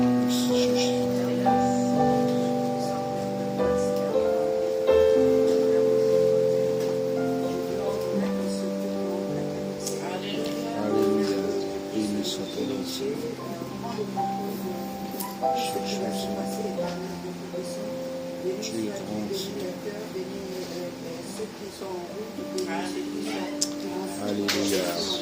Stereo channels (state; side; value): identical; both; correlation 1.00